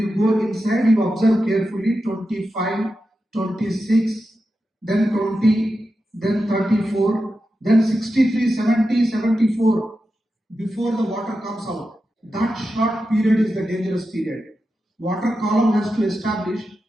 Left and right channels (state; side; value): normal; both; correlation 0.90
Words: go inside, you observe carefully 25, 26, then 20, then 34, then 63, 70, 74 before the water comes out. That short period is the dangerous period. Water column has to establish